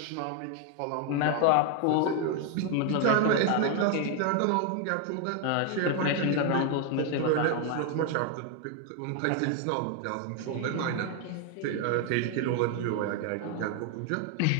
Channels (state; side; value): different; both; correlation 0.01